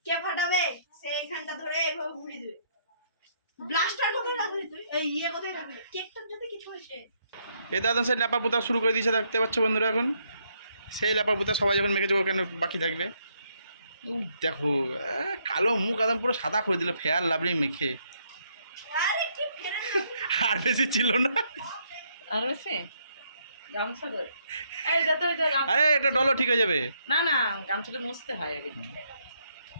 কে ফাটাবে, সেইখানটা ধরে এইভাবে ঘুরিয়ে দেবে। ব্লাস্টার করে রাখলি তুই? এই ইয়ে কোথায় রাখলি? কেকটার যদি কিছু হয়েছে। এ দাদা সেই ল্যাপা পোতা শুরু করে দিয়েছে, দেখতে পাচ্ছ বন্ধুরা। এখন সেই ল্যাপা পোতা সবাই যখন মেখেছে ও কেন বাকি থাকবে। দেখো কালো মুখ একদম পুরো সাদা করে দিল ফেয়ার লাভলি মেখে। আরে কি ফেরে আর বেশি ছিল না। আর বেশি গামছা ধরে এই যত আরে এটা ডলো ঠিক হয়ে যাবে। না না গামছাটা মুছতে হয় আগে।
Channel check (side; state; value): both; inverted; correlation -0.72